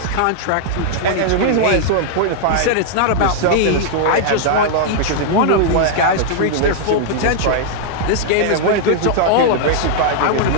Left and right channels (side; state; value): both; different; correlation -0.01